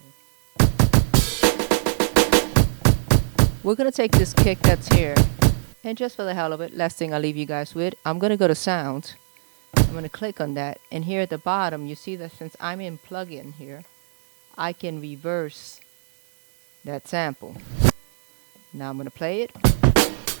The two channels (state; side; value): silent; left; digital silence